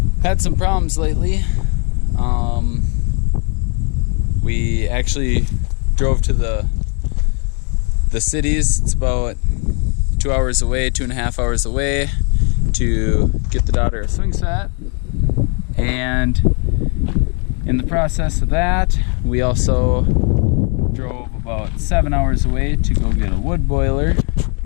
Had some problems lately. We actually drove to the cities. It's about 2 hours away, 2.5 hours away, to get the daughter a swing set. And in the process of that, we also drove about 7 hours away to go get a wood boiler,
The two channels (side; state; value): right; quieter; 36.1 dB